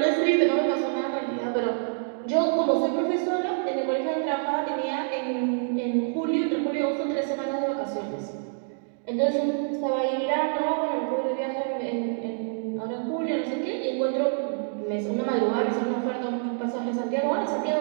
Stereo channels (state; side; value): silent; left; digital silence